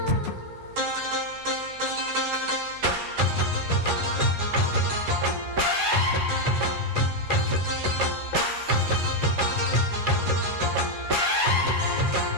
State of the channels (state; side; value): late; left; 10 ms